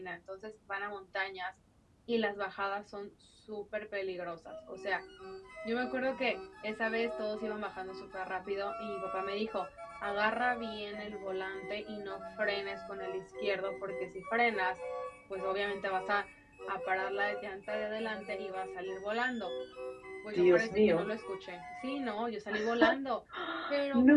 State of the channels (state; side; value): identical; both; correlation 1.00